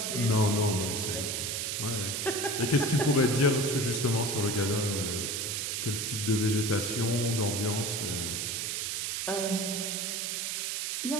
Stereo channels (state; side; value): noise; right; hiss, 1 dB below the sound